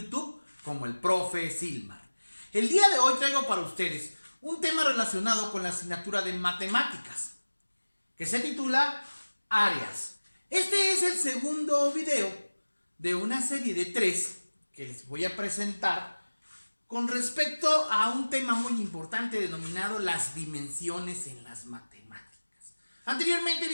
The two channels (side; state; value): both; inverted; correlation -1.00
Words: como el Profe Silmar. El día de hoy traigo para ustedes un tema relacionado con la asignatura de matemáticas, que se titula Áreas. Este es el segundo video de una serie de 3 que les voy a presentar con respecto a un tema muy importante denominado las dimensiones en las matemáticas. Anteriormente